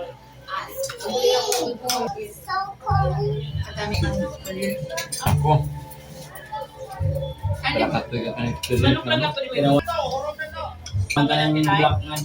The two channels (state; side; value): identical; both; correlation 1.00